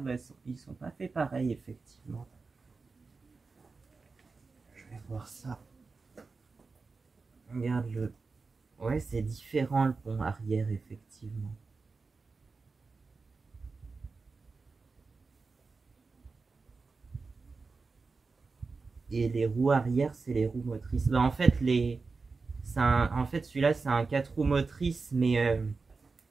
bah, ils sont pas faits pareil, effectivement. Je vais voir ça. Regarde le... Ouais, c'est différent le pont arrière, effectivement. Et les roues arrière, c'est les roues motrices. Bah, en fait, celui-là, c'est un 4 roues motrices, mais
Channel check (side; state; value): left; quieter; 4.3 dB